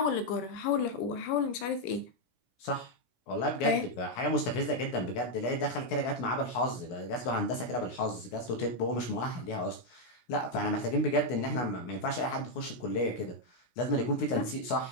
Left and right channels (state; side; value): late; right; 16 ms